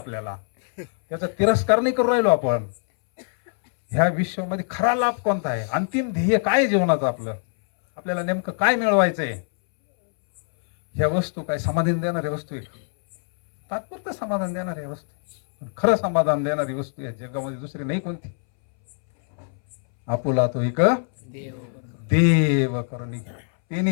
त्याचा तिरस्कार नाही करू राहिलो आपण. ह्या विश्वामध्ये खरा लाभ कोणता आहे? अंतिम ध्येय काय जीवनाचं आपलं? आपल्याला नेमकं काय मिळवायचंय? ह्या वस्तू काय समाधान देणाऱ्या वस्तू आहे? तात्पुरतं समाधान देणाऱ्या वस्तू. खरं समाधान देणारी वस्तू या जगामध्ये दुसरी नाही कोणती. आपुला तो एक देव करुणी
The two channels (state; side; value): silent; right; 63 dB below the other